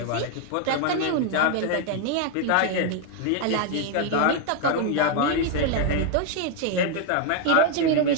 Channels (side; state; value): both; different; correlation 0.00